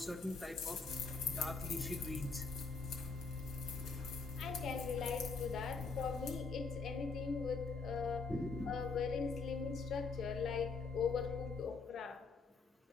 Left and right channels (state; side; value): quieter; right; 4.4 dB